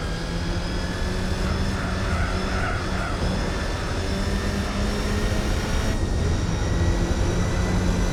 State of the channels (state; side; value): identical; both; correlation 1.00